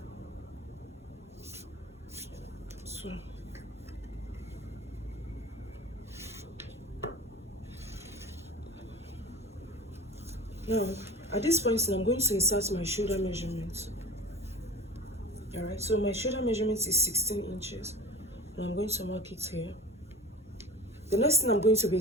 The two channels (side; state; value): both; normal; correlation 0.36